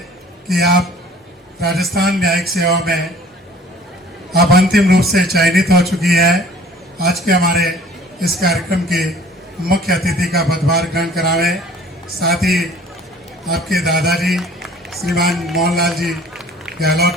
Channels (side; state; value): both; normal; correlation 0.51